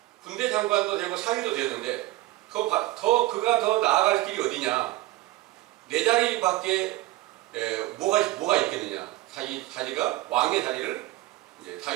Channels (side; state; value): left; quieter; 17.5 dB